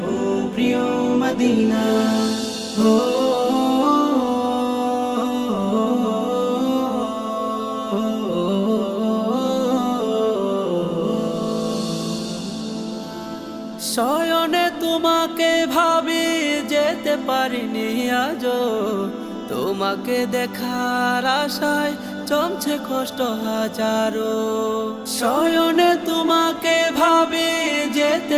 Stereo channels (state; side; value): identical; both; correlation 1.00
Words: ও প্রিয় মদিনা। ও শয়নে তোমাকে ভাবি যেতে পারিনি আজো, তোমাকে দেখার আশায় জমছে কষ্ট হাজারো। শয়নে তোমাকে ভাবি